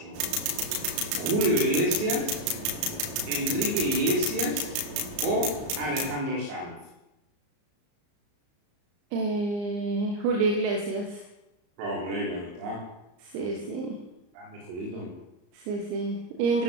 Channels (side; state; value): left; late; 34 ms